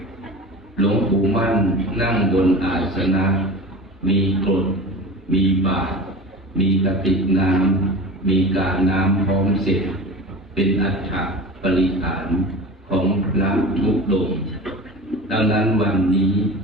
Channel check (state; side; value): normal; both; correlation 0.33